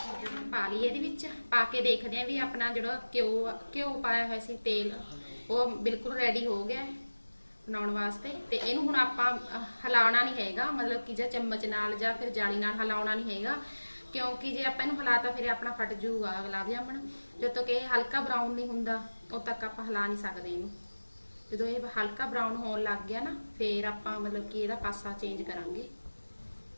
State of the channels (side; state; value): both; inverted; correlation -1.00